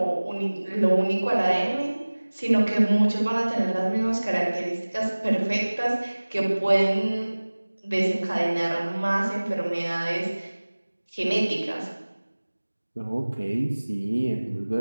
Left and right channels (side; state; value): both; inverted; correlation -1.00